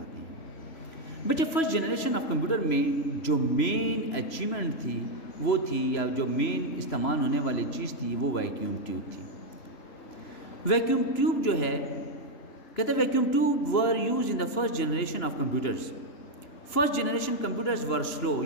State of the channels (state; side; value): late; right; 2.9 ms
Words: ہیں. بچے فرسٹ جنریشن آف کمپیوٹر میں جو مین اچیومنٹ تھی وہ تھی، یا جو مین استعمال ہونے والی چیز تھی، وہ ویکیوم ٹیوب تھی. ویکیوم ٹیوب جو ہے، کہتے ہیں vacuum tube were use in the first generation of computers. First generation computers were slow.